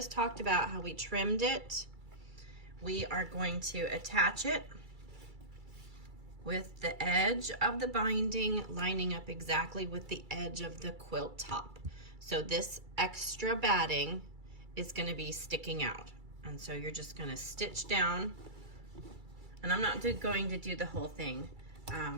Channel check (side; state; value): left; late; 2.3 ms